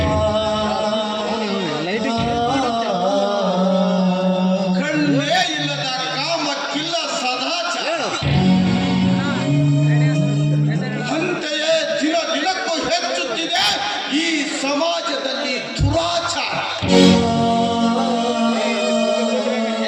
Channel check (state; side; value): identical; both; correlation 1.00